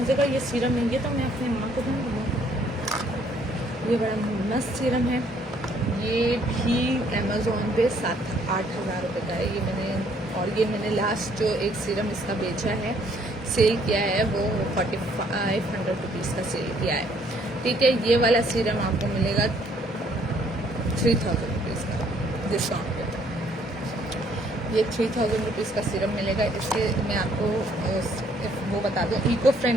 का ये सीरम है, ये तो मैं अपनी माँ को दूंगी। ये बड़ा मस्त सीरम है, ये भी अमेजोन पे 7-8 हज़ार रुपये का है। ये मैंने लास्ट जो एक सीरम इसका बेचा है, सेल किया है, वो 4500 रुपीज़ का सेल किया है, ठीक है। ये वाला सीरम आपको मिलेगा 3000 रुपीज़ का डिस्काउंट पे। ये 3000 रुपीज़ का सीरम मिलेगा। इसके मैं आपको वो बता दूँ, इको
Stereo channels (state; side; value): normal; both; correlation 0.65